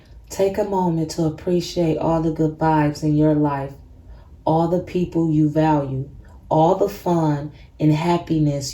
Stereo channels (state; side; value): identical; both; correlation 1.00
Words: Take a moment to appreciate all the good vibes in your life, all the people you value, all the fun and